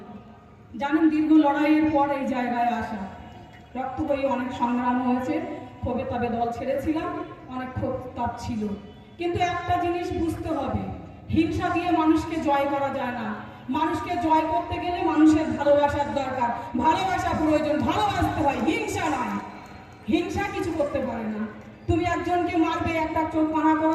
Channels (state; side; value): identical; both; correlation 1.00